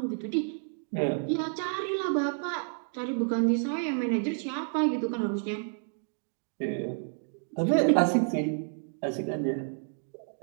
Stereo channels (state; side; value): silent; left; 58 dB below the other